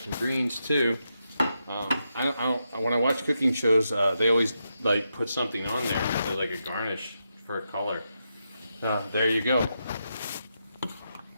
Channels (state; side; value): inverted; both; correlation -0.85